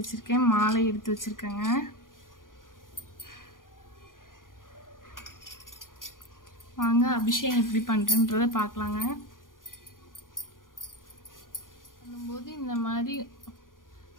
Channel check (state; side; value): late; right; 0.90 ms